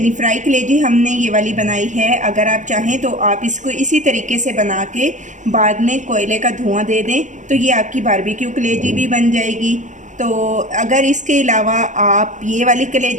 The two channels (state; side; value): late; left; 0.36 ms